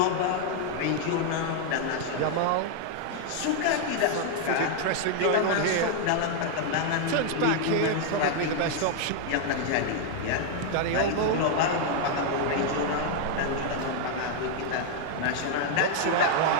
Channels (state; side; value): different; both; correlation 0.00